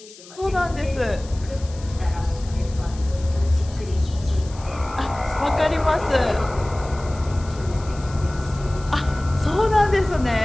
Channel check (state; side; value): noise; left; hiss, 20 dB below the sound